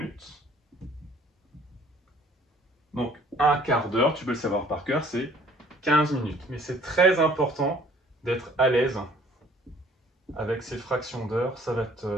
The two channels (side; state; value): both; normal; correlation 0.56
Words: Donc un quart d'heure, tu peux le savoir par cœur, c'est 15 minutes. Mais c'est très important d'être à l'aise avec ces fractions d'heures. Ça va